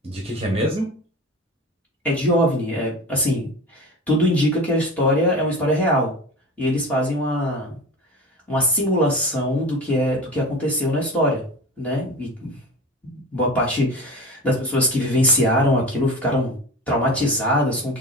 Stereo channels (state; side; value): normal; both; correlation 0.32